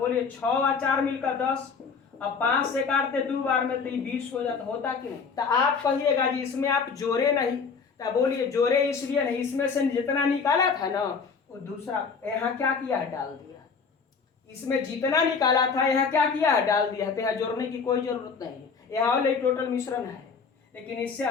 6 और 4 मिलकर 10। अब 5 से काटते 2 बार में तो 20 हो जाता, होता कि नहीं। तो आप कहिएगा जी इसमें आप जोड़े नहीं, तो बोलिए जोड़े इसलिए नहीं, इसमें से जितना निकाला था ना वो दूसरा यहाँ क्या किया है डाल दिया, इसमें जितना निकाला था यहाँ क्या किया है डाल दिया है, तो यहाँ जोड़ने की कोई जरूरत नहीं है, यहाँ वाले टोटल मिश्रण है। लेकिन इससे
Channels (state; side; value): quieter; right; 5.5 dB